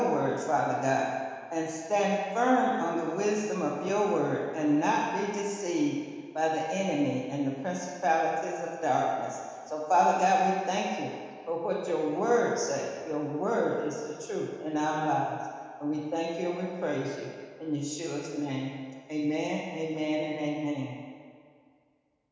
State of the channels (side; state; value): both; identical; correlation 1.00